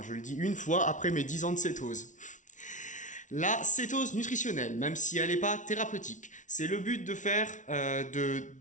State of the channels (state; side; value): late; right; 0.37 ms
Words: je le dis une fois après mes 10 ans de cétose. La cétose nutritionnelle, même si elle n'est pas thérapeutique, c'est le but de faire, que